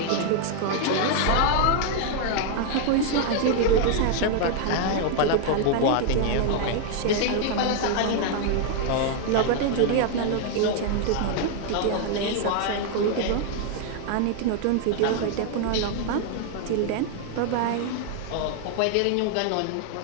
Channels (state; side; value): different; both; correlation 0.00